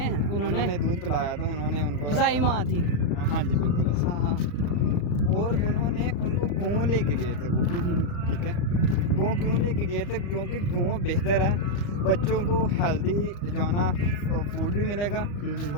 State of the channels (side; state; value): right; late; 35 ms